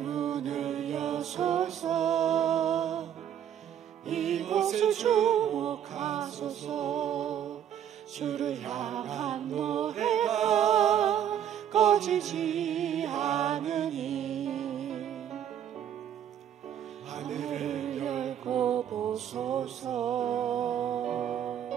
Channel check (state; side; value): quieter; left; 9.8 dB